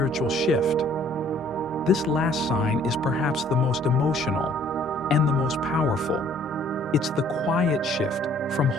shift. This last sign is perhaps the most emotional and the most powerful. It's the quiet shift from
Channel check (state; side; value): normal; both; correlation 0.59